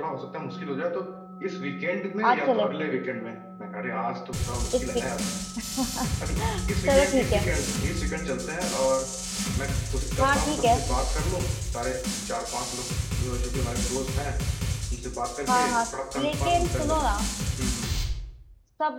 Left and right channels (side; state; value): both; identical; correlation 1.00